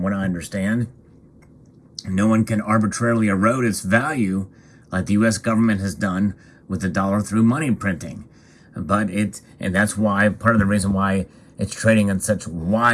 what I understand. No one can arbitrarily erode its value like the U.S. government has done with the dollar through money printing. And that's why, part of the reason why it's trading in such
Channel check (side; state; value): both; identical; correlation 1.00